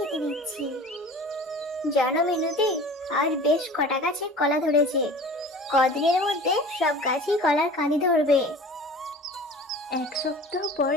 দিচ্ছি। জানো মিনতি, আজ বেশ কটা গাছে কলা ধরেছে। কদিনের মধ্যে সব গাছই কলার কাঁদি ধরবে। এক সপ্তাহ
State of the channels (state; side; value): normal; both; correlation 0.41